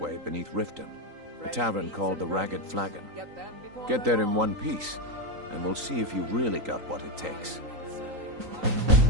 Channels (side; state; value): left; late; 3.8 ms